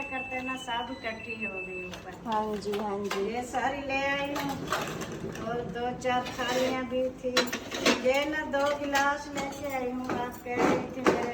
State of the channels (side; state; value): both; identical; correlation 1.00